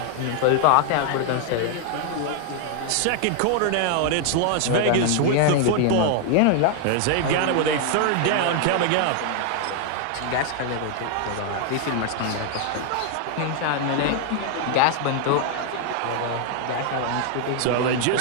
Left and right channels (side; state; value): both; different; correlation 0.00